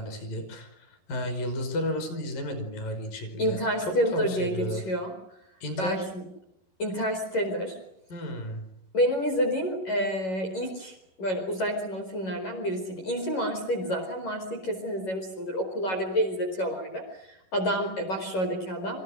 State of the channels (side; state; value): right; late; 11 ms